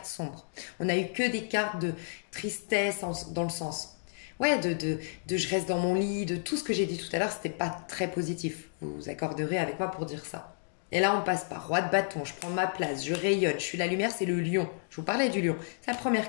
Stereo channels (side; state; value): right; silent; digital silence